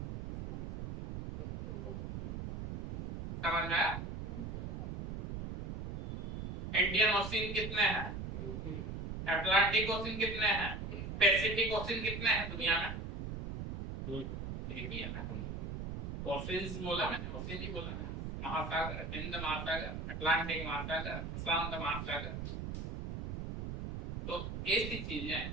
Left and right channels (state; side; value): noise; right; rumble, 6 dB below the sound